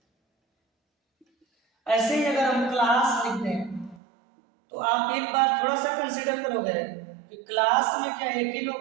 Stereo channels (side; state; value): left; drops out; at 4.0 s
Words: ऐसे ही अगर हम क्लास लिख दें तो आप एक बार थोड़ा सा कंसीडर करोगे कि क्लास में क्या एक ही